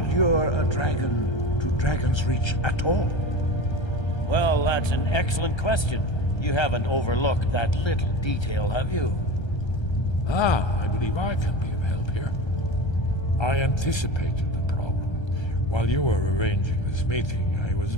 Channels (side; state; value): right; late; 1.3 ms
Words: lure a dragon to Dragon's Reach at all. Well, that's an excellent question. You haven't overlooked that little detail, have you? Ah, I believe I can be of help here. I anticipated the problem. While you were arranging this meeting, I was